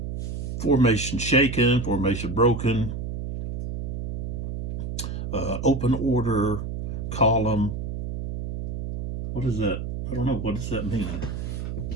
formation shaken, formation broken? open order column. What is that? I don't know. What does that mean?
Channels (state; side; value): noise; right; hum, 4 dB below the sound